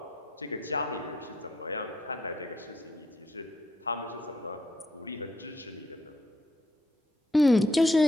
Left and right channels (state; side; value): normal; both; correlation 0.74